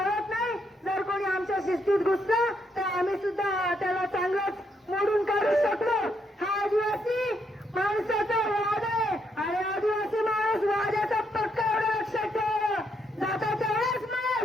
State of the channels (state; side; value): normal; both; correlation 0.76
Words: नाही. जर कोणी आमच्या शिस्तीत घुसलं तर आम्ही सुद्धा त्याला चांगलंच मोडून काढू शकतो. हा आदिवासी माणसाचा वाद आहे आणि आदिवासी माणूस वाद्याचा पक्का एवढं लक्षात ठेवा. जाता तेवढाच